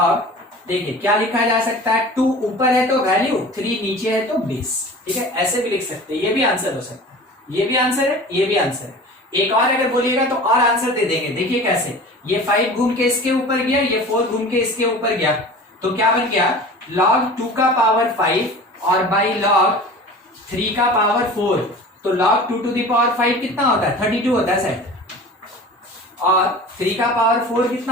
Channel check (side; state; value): both; normal; correlation 0.39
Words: देखिए क्या लिखा जा सकता है, 2 ऊपर है तो वैल्यू, 3 नीचे है तो बेस। ठीक है, ऐसे भी लिख सकते हैं, ये भी आंसर हो सकता है, ये भी आंसर है, ये भी आंसर है। एक और अगर बोलिएगा तो और आंसर दे देंगे। देखिए कैसे, ये 5 घूम के इसके ऊपर गया, ये 4 घूम के इसके ऊपर गया, तो क्या बन गया? log 2 का पावर 5 और बाई log 3 का पावर 4, तो log 2 to the power 5 कितना होता है? 32 होता है शायद, और 3 का पावर 4